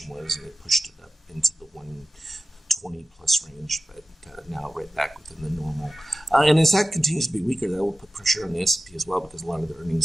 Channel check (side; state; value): both; normal; correlation 0.93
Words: was, and it pushed it up into the 120 plus range, but now right back within the normal. And as that continues to be weaker, that will put pressure on the S&P as well, because a lot of the